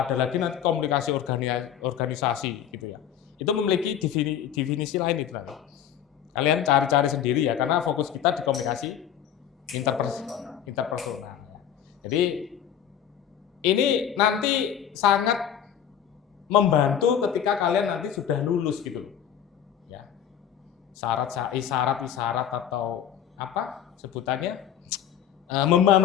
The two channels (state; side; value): quieter; right; 9.5 dB